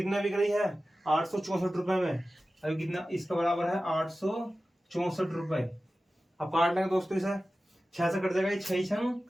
बिक रही है 864 रुपए में। अभी कितना इसका बराबर है 864 रुपए। अब काट लेंगे दोस्तों इसे। 6 से कट जाएगा 6 छंग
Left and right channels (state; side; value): normal; both; correlation 0.95